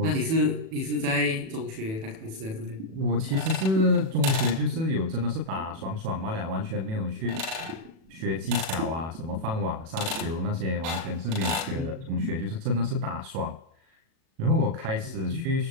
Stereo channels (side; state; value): left; late; 37 ms